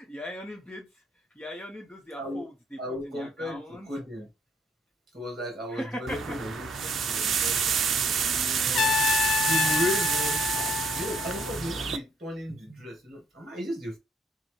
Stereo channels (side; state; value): both; normal; correlation 0.65